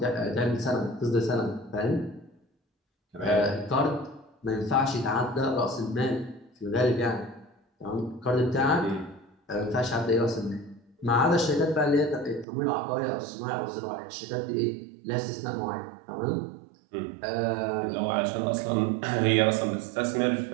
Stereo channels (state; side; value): drops out; left; at 12.5 s